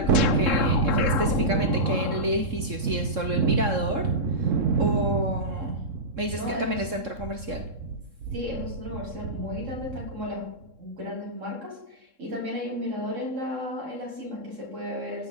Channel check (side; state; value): left; late; 3.7 ms